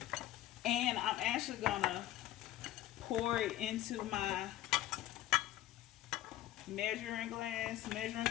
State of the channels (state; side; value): quieter; right; 14.1 dB